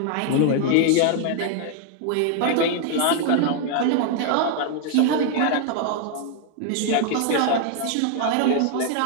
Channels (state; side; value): different; both; correlation 0.00